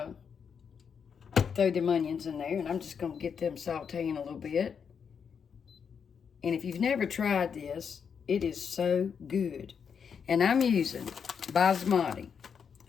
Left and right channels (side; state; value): right; quieter; 6.8 dB